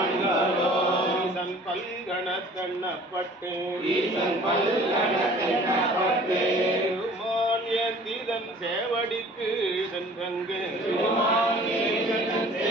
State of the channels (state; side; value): normal; both; correlation 0.49